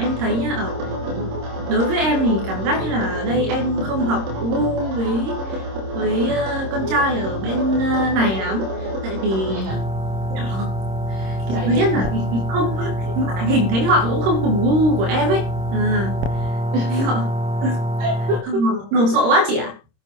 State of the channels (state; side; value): late; left; 26 ms